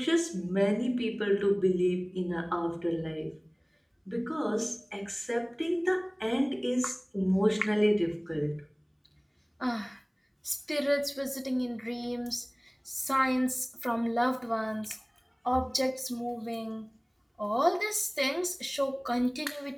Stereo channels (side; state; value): both; identical; correlation 1.00